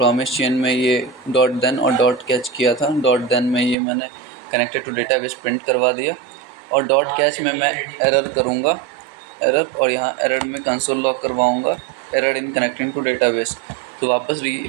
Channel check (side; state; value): left; drops out; at 3.8 s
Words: चेन में ये डॉट देन और डॉट कैच किया था। डॉट देन में ये मैंने कनेक्टेड टू डेटाबेस प्रिंट करवा दिया और डॉट कैच में मैं एरर करूँगा, एरर, और यहाँ एरर में कंसोल लॉग करवाऊँगा, error in connecting to database. तो वापस